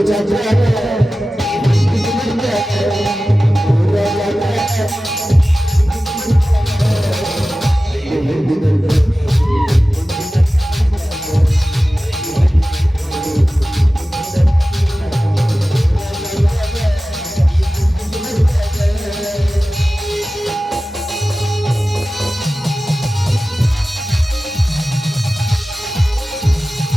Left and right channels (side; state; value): both; normal; correlation 0.95